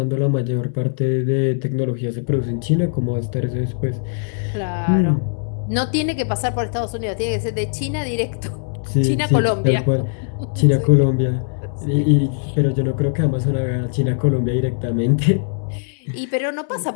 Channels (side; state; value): right; silent; 65 dB below the other